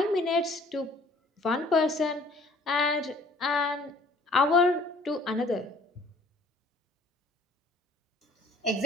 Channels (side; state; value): both; normal; correlation 0.55